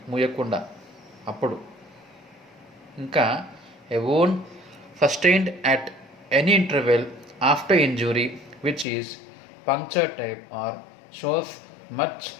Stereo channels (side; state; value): right; drops out; at 8.8 s